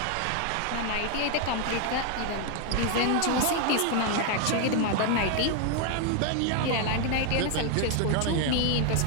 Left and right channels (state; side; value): different; both; correlation 0.00